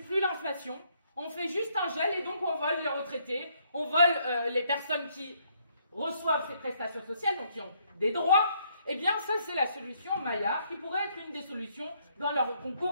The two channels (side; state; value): both; inverted; correlation -0.70